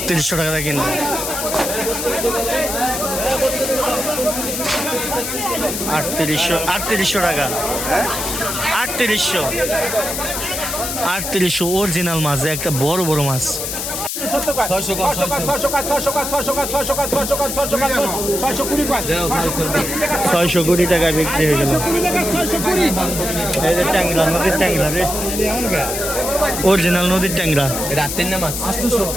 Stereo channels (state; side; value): noise; left; hiss, 4 dB below the sound